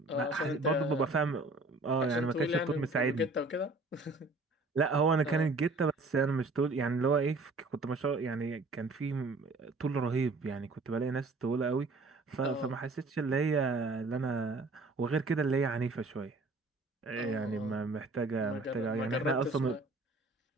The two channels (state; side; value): quieter; left; 3.3 dB